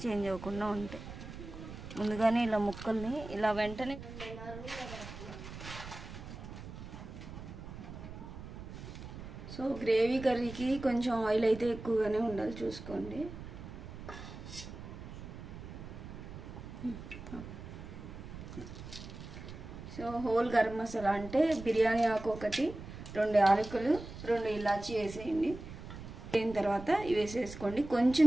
చేంజ్ అవ్వకుండా ఉంటాయి. ముందుగానే ఇలా ముక్కల్ని ఇలా వెంటనే సో గ్రేవీ కర్రీకి కొంచెం ఆయిల్ అయితే ఎక్కువగానే ఉండాలి, చూసుకోండి. సో హోల్ గరం మసాలా అంటే బిర్యానీ ఆకు ఒకటి, 2 యాలకులు, 2 ఇలాచీ వేసేయండి. అయిన తర్వాత ఇవి వేసేసుకోండి. కొంచెం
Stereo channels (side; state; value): right; noise; rumble, 11 dB below the sound